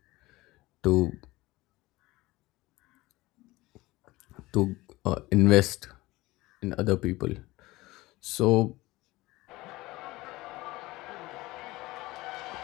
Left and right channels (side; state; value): right; quieter; 19.9 dB